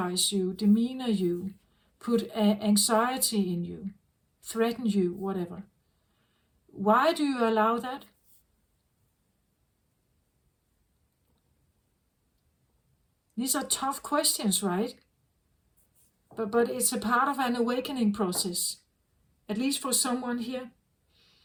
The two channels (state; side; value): identical; both; correlation 1.00